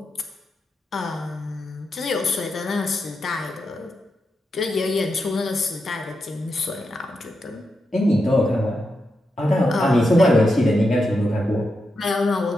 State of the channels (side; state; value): both; normal; correlation 0.86